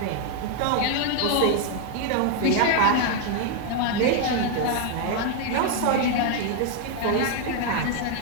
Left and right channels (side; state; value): both; different; correlation 0.00